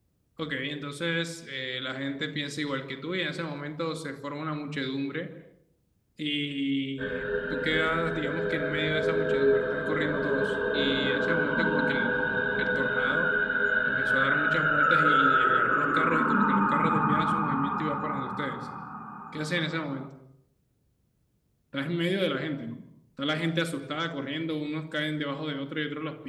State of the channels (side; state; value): both; identical; correlation 1.00